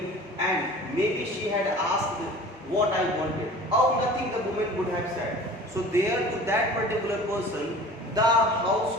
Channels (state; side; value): normal; both; correlation 0.42